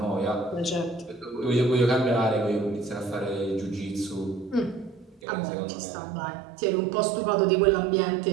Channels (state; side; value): drops out; left; at 5.2 s